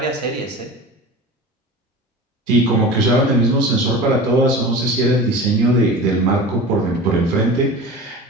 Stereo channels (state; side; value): normal; both; correlation 0.34